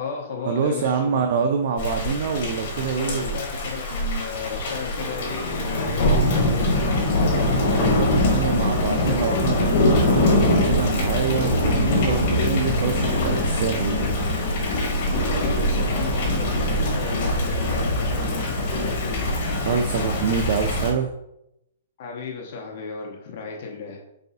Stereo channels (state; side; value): inverted; both; correlation -0.40